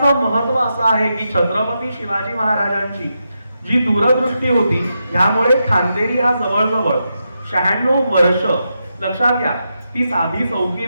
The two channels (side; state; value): both; inverted; correlation -0.86